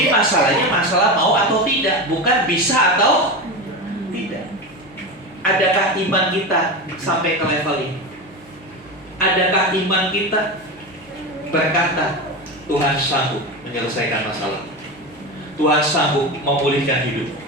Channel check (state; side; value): normal; both; correlation 0.22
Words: masalahnya masalah mau atau tidak, bukan bisa atau tidak. Adakah iman kita sampai ke level ini? Adakah iman kita berkata, Tuhan sanggup menyelesaikan masalah, Tuhan sanggup memulihkan hidup,